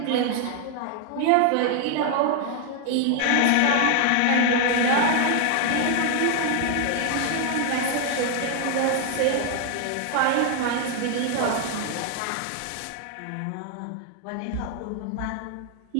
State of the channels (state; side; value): different; both; correlation 0.00